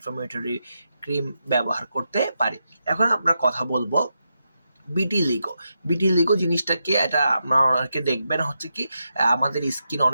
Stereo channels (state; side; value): inverted; both; correlation -0.86